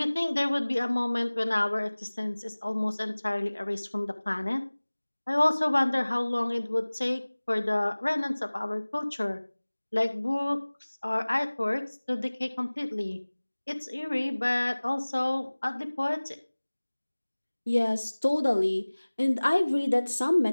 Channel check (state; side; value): inverted; both; correlation -1.00